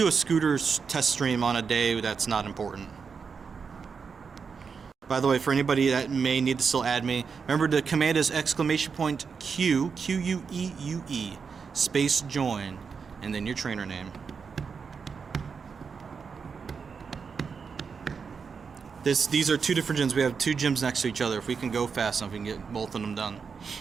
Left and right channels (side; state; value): left; quieter; 5.7 dB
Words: a scooter test stream on a day that's not important. By the way, for anybody that may need to still add me, remember the command is exclamation point Q, Q-U-E-U-E, space join, and then your trainer name. These are two different gyms. We have two gyms next to each other. If we can go fast enough, we can get both of them done.